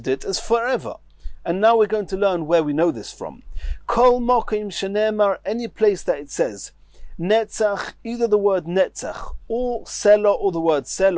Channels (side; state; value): both; identical; correlation 1.00